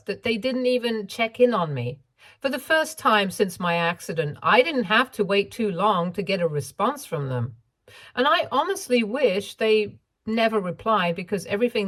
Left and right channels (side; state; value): both; identical; correlation 1.00